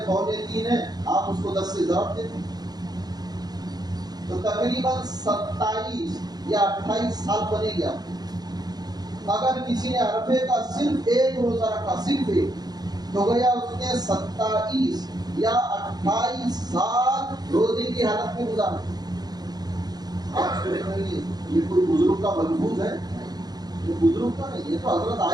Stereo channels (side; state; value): left; late; 0.19 ms